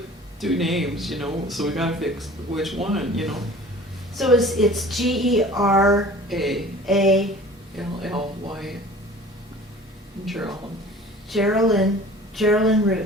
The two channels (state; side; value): normal; both; correlation 0.45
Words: two names, you know, so we gotta fix which one, you know. So it's Geralyn. A-L-L-Y, Geraldine. Geraldine